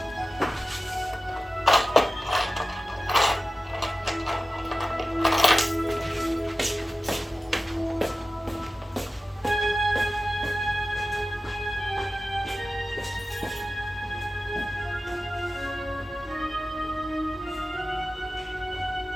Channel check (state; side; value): normal; both; correlation 0.95